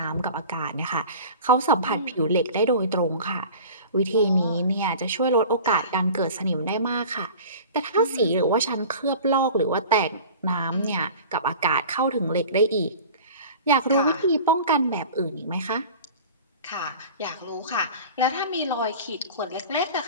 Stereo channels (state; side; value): inverted; both; correlation -0.39